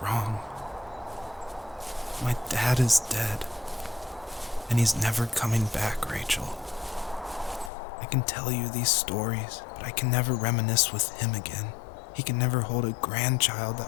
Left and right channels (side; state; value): right; drops out; at 7.7 s